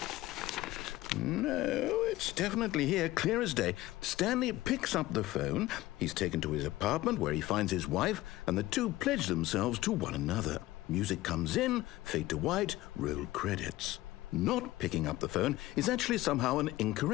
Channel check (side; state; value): right; quieter; 17.1 dB